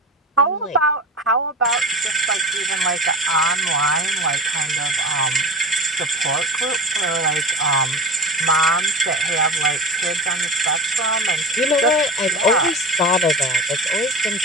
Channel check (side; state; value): both; normal; correlation 0.31